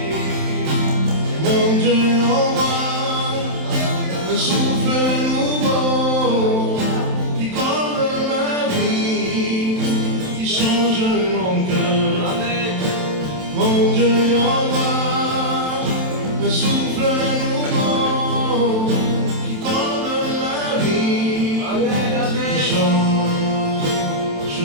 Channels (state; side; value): late; left; 27 ms